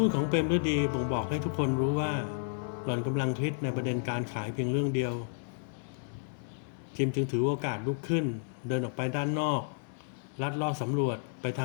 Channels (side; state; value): right; silent; 57 dB below the other